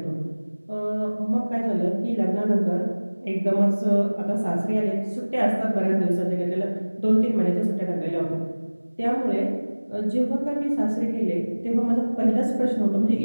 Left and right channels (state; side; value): inverted; both; correlation -1.00